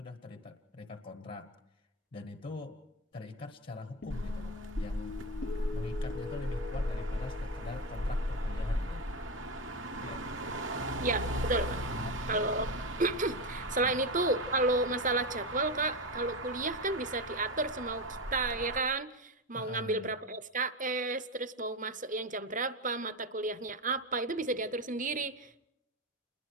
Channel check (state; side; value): normal; both; correlation 0.16